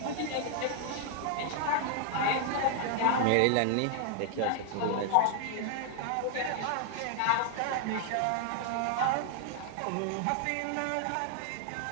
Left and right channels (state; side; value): different; both; correlation 0.00